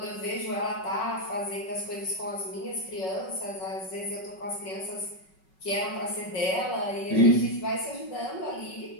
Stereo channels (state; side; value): late; right; 5.4 ms